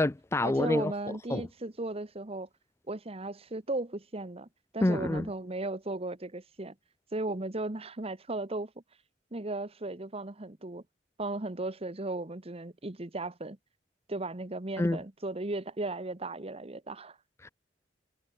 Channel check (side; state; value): both; normal; correlation 0.62